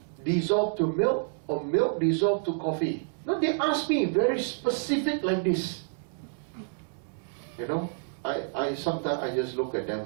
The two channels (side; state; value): left; silent; digital silence